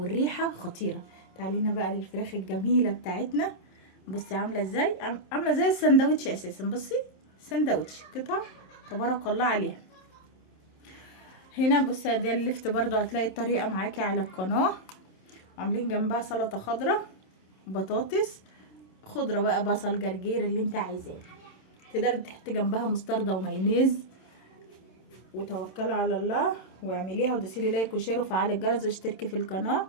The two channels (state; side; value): late; right; 27 ms